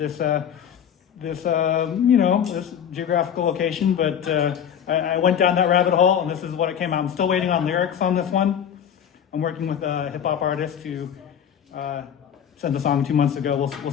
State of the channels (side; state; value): right; quieter; 8.7 dB